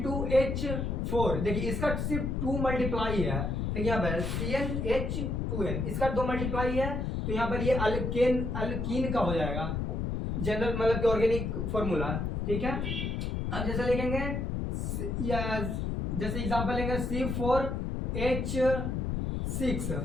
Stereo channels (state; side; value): noise; left; rumble, 1 dB below the sound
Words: देखिए इसका सिर्फ 2 मल्टीप्लाई है, तो यहाँ पर CnH2n, इसका 2 मल्टीप्लाई है, तो यहाँ पर ये अल्कीन का हो जाएगा जनरल मतलब कि ऑर्गेनिक फॉर्मूला, ठीक है। अब जैसे लिखेंगे या जैसे एग्जांपल लेंगे C4H6,